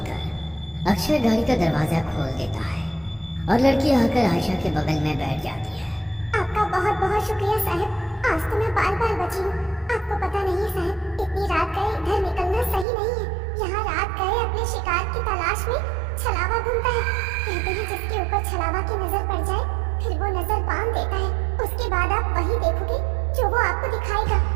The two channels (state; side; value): drops out; left; at 12.9 s